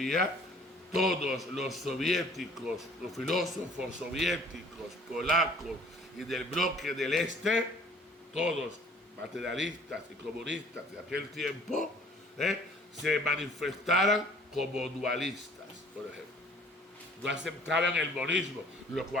todos los soviéticos, los filósofos soviéticos, polacos y del bloque del Este, todos materialistas y comunistas de aquel tiempo, se manifestaran como dualistas, por ejemplo. no aceptaban el monismo, lo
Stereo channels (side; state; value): both; normal; correlation 0.54